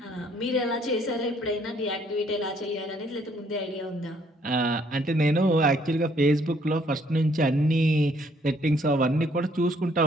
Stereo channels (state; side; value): normal; both; correlation 0.65